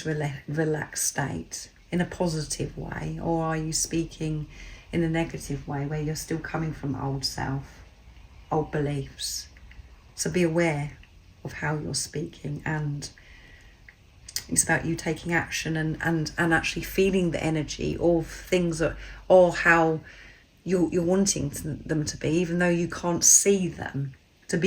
relaxed state? In a positive way, or are you speaking in a negative way where you're still coming from old self, old beliefs? So be aware of how you're speaking, and it's about you taking action and actually feeling the energy of things that, or how you're wanting them to be, even though you can't see them, to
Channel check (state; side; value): identical; both; correlation 1.00